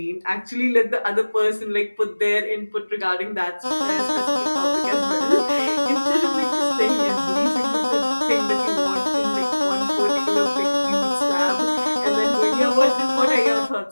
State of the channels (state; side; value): inverted; both; correlation -1.00